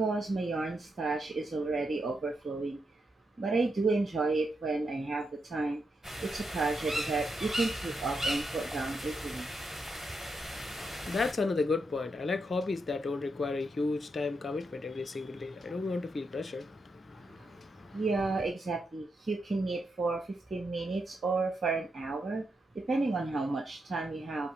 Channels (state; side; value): normal; both; correlation 0.83